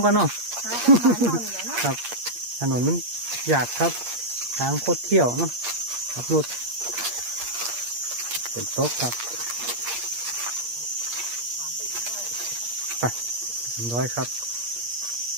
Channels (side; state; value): left; late; 8.5 ms